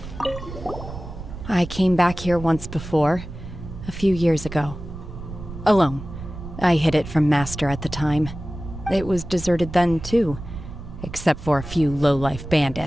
I came back here once before, a few years ago. Alone. I hid it from Master at the time. It was deserted then, too, except for a few low-life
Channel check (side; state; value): right; noise; rumble, 11 dB below the sound